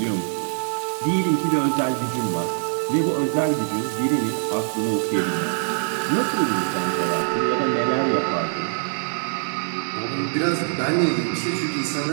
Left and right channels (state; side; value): silent; left; digital silence